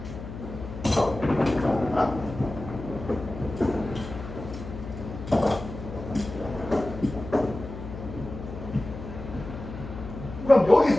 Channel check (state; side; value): noise; left; hum, 11 dB below the sound